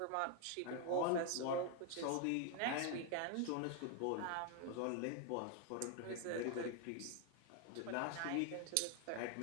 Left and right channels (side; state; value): both; different; correlation 0.00